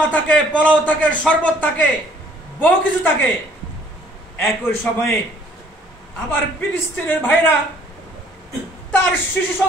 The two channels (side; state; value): both; normal; correlation 0.59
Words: থাকে, পোলাও থাকে, শরবত থাকে, বহু কিছু থাকে। একই সময়ে আবার ফিলিস্তিনের ভাইরা তার শিশু